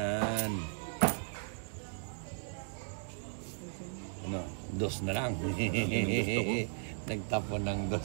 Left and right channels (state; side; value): silent; left; 54 dB below the other